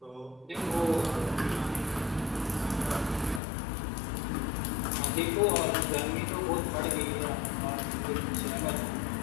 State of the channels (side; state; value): right; drops out; at 3.4 s